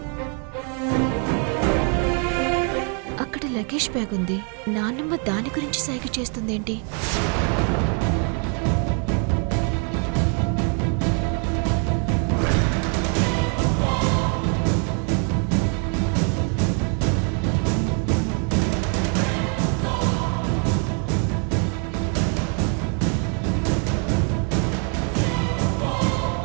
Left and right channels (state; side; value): quieter; left; 39.8 dB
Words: అక్కడ లగేజ్ బ్యాగ్ ఉంది. నాన్నమ్మ దాని గురించి సైగ చేస్తుందేంటి?